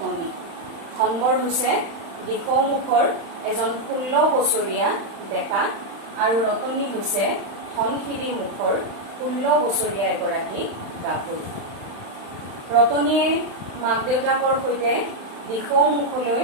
ধনবৰ হৈছে দিশমুখৰ এজন 16 বছৰীয়া ডেকা, আৰু ৰতনী হৈছে ধনশিৰি মুখৰ 16 বছৰীয়া এগৰাকী গাভৰু। ৰতনীয়ে মাক দেউতাকৰ সৈতে দিশমুখলৈ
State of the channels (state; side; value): late; left; 35 ms